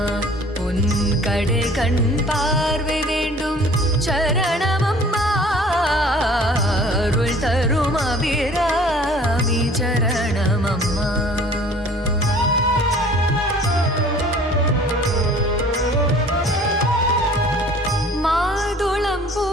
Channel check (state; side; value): normal; both; correlation 0.50